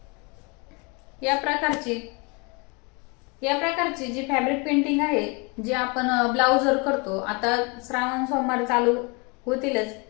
या प्रकारची जी फॅब्रिक पेंटिंग आहे, जी आपण ब्लाउजवर करतो. आता श्रावण सोमवार चालू होतीलच,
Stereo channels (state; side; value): quieter; right; 30.6 dB